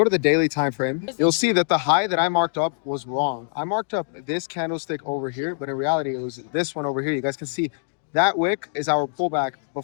to the daily time frame, you'll see that the high that I marked up was wrong. I marked up this candlestick over here, but in reality, it was this one over here. You guys can see that wick is our pullback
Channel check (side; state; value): right; silent; digital silence